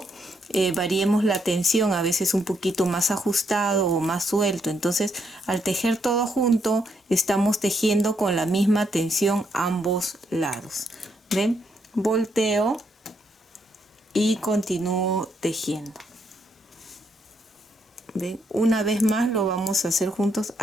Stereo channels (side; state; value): both; normal; correlation 0.76